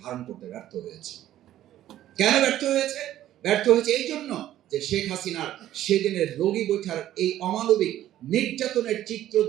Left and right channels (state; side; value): quieter; left; 12.9 dB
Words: ধারণ করতে ব্যর্থ হয়েছে। কেন ব্যর্থ হয়েছে? ব্যর্থ হয়েছে এই জন্য যে শেখ হাসিনার সেদিনের রোগী বৈঠার এই অমানবিক নির্যাতনের চিত্র